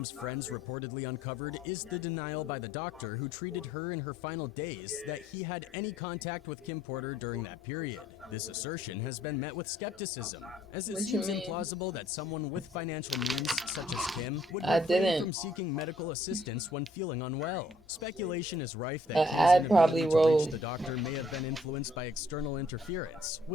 friends reportedly uncovered is the denial by the doctor who treated her in her final days that he had any contact with Kim Porter during that period. This assertion has been met with skepticism, as it seems implausible that someone with financial means, such as Kim, would refrain from seeking medical assistance when feeling unwell. Speculation is rife that Kim's inability to reach the doctor may have been influenced by external interference,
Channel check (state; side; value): normal; both; correlation 0.64